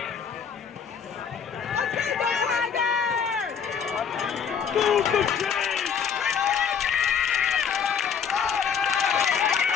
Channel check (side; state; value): right; quieter; 7.1 dB